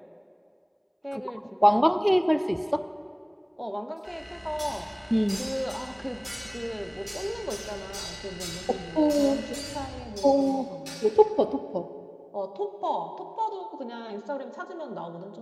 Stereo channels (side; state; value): both; identical; correlation 1.00